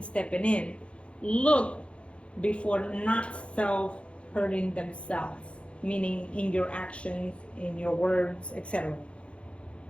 stepping in. Look before not self hurting themselves, meaning in your actions, in your words, etc.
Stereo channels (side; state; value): right; late; 0.060 ms